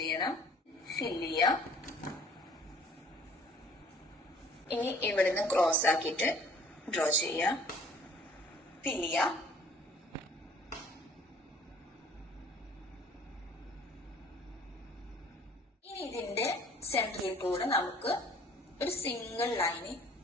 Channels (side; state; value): both; normal; correlation 0.54